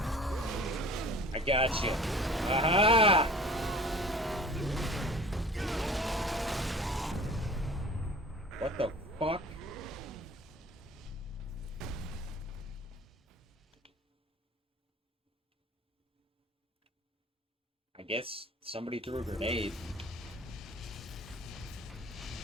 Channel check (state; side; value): normal; both; correlation 0.44